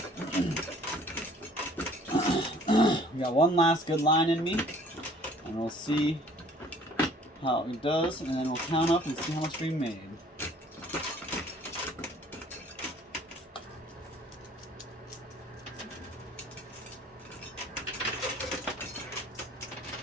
we got one last good line in me, and we'll see how it does, and then we'll count up and see how much we made.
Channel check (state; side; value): normal; both; correlation 0.55